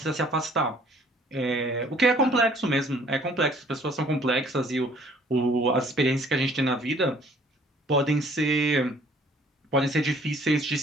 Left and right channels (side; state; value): both; normal; correlation 0.57